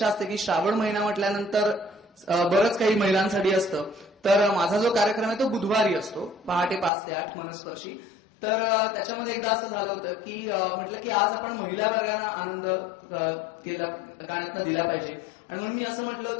असते की श्रावण महिना म्हटल्यानंतर बरंच काही महिलांसाठी असतं. तर माझा जो कार्यक्रम आहे तो बुधवारी असतो, पहाटे 5 ते 8 मनस्पर्शी. तर त्याच्यामध्ये एकदा असं झालं होतं की म्हटलं की आज आपण महिला वर्गांना आनंद केला गाण्यातनं दिला पाहिजे. आणि म्हणून मी असं म्हटलं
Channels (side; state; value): right; drops out; at 6.9 s